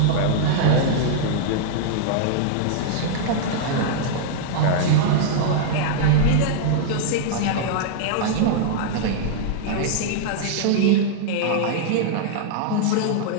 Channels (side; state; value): both; different; correlation -0.01